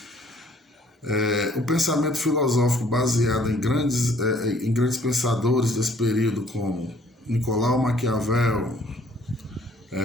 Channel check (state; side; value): normal; both; correlation 0.60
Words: O pensamento filosófico baseado em grandes pensadores desse período, como Nicolau Maquiavel,